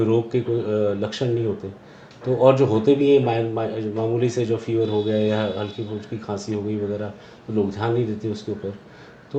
रोग के कोई लक्षण नहीं होते। तो और जो होते भी हैं मामूली से जो फीवर हो गया या हल्की फुल्की खांसी हो गई वगैरह, तो लोग ध्यान नहीं देते उसके ऊपर।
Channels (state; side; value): identical; both; correlation 1.00